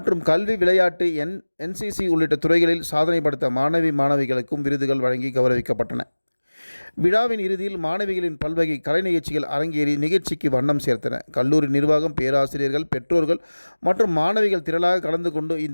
கல்வி, விளையாட்டு, NCC உள்ளிட்ட துறைகளில் சாதனை படைத்த மாணவிகளுக்கும் விருதுகள் வழங்கி கௌரவிக்கப்பட்டன. விழாவின் இறுதியில் மாணவிகளின் பல்வகை கலை நிகழ்ச்சிகள் அரங்கேறி நிகழ்ச்சிக்கு வண்ணம் சேர்த்தன. கல்லூரி நிர்வாகம், பேராசிரியர்கள், பெற்றோர்கள் மற்றும் மாணவிகள் திரளாக கலந்து கொண்டு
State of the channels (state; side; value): inverted; both; correlation -1.00